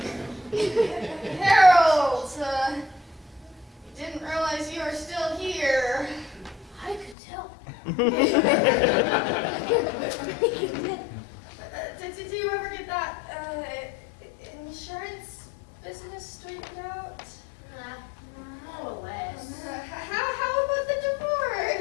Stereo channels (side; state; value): right; drops out; at 7.2 s